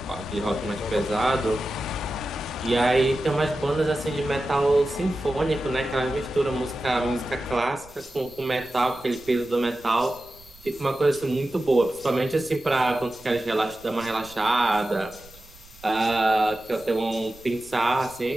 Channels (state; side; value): noise; right; rumble, 24 dB below the sound